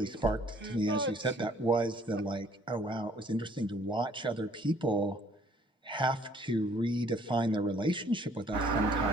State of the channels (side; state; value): both; normal; correlation 0.60